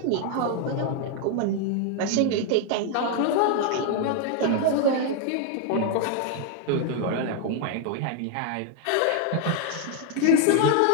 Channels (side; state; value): both; different; correlation 0.00